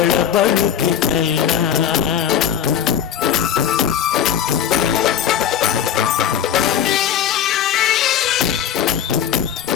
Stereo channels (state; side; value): quieter; right; 9.4 dB